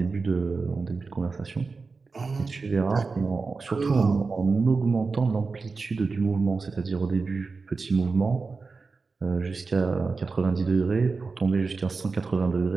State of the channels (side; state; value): left; quieter; 4.3 dB